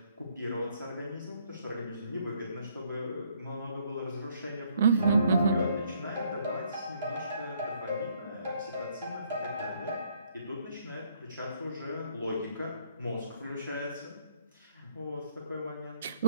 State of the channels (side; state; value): both; inverted; correlation -0.67